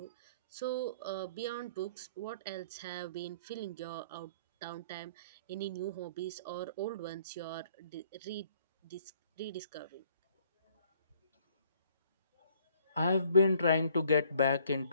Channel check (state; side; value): inverted; both; correlation -0.61